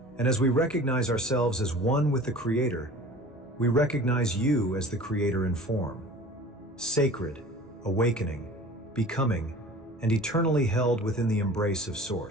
And as we recognize ourselves as one with the Creator, we recognize you as the Creator in form. Sacred, awakening, becoming, and eternally held within the embrace of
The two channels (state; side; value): normal; both; correlation 0.42